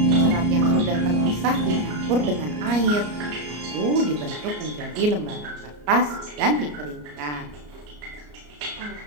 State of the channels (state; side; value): late; left; 34 ms